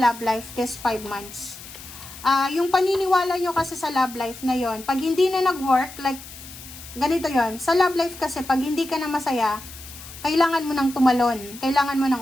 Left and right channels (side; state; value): left; noise; hiss, 15 dB below the sound